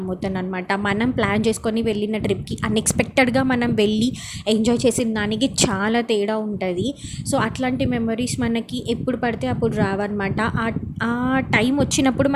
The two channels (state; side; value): identical; both; correlation 1.00